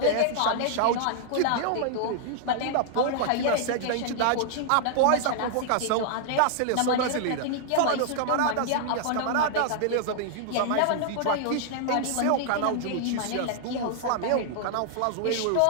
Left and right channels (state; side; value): different; both; correlation -0.01